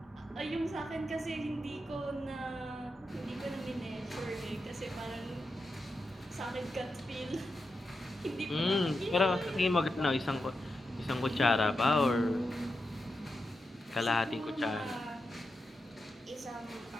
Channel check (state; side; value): normal; both; correlation 0.88